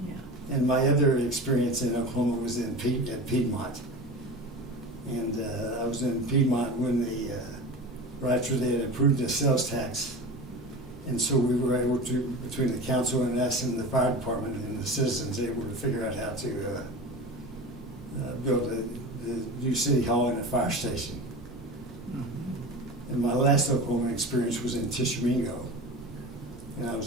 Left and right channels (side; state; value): both; normal; correlation 0.31